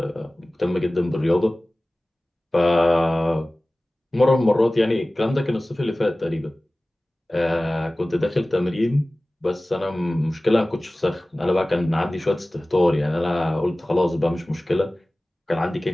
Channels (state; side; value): normal; both; correlation 0.98